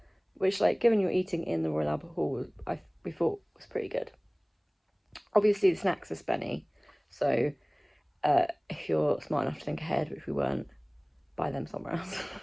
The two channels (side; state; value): both; identical; correlation 1.00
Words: Which, like, given you're eating in the Royal Albert Hall, we thought was pretty good. Obviously, the snacks are spenny. So if you're smart enough to think ahead, which we weren't, buy them somewhere else.